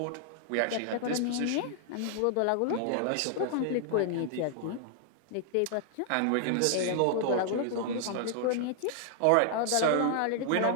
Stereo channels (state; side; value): different; both; correlation 0.00